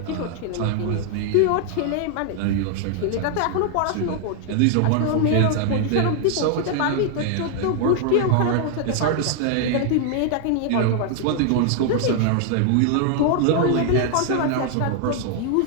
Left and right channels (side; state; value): both; different; correlation 0.00